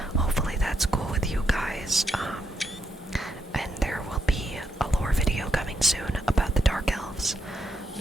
Hopefully that's cool with you guys. And there will be a lore video coming soon about the Dark Elves.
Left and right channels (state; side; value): normal; both; correlation 0.79